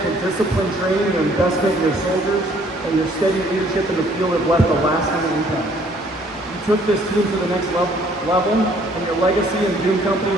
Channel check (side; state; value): both; normal; correlation 0.61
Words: to disciplined training, your investment in your soldiers, and your steady leadership in the field have left a lasting impact. You took this team to the next level, and your legacy in Doom Company